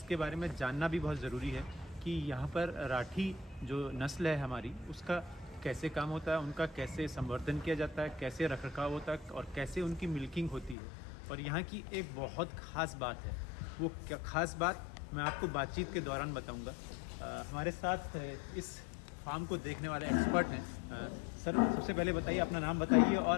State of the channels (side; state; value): right; drops out; at 10.8 s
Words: बारे में जानना भी बहुत ज़रूरी है कि यहाँ पर राठी जो नस्ल है हमारी उसका कैसे काम होता है, उनका कैसे संवर्धन किया जाता है, कैसे रखरखाव होता है और कैसे उनकी मिल्किंग होती है। और यहाँ की एक बहुत ख़ास बात है, वो क्या ख़ास बात मैं आपको बातचीत के दौरान बताऊँगा। हमारे साथ इस फार्म को देखने वाले एक्सपर्ट हैं। सर, सबसे पहले बताइए, अपना नाम बताइए